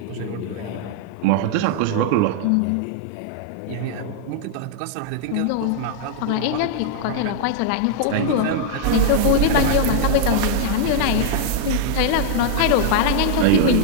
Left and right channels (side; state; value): both; different; correlation -0.01